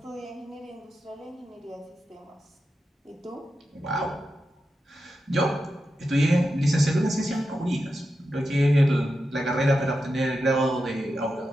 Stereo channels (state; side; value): normal; both; correlation 0.89